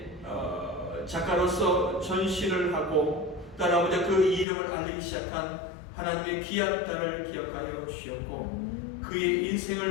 작가로서 전시를 하고 따라오자 그 이름을 알리기 시작한 하나님의 귀한 딸을 기억하여 주셨고 그의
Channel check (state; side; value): drops out; right; at 4.5 s